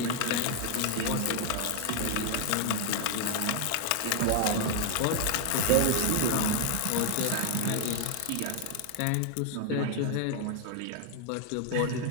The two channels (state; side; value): different; both; correlation 0.00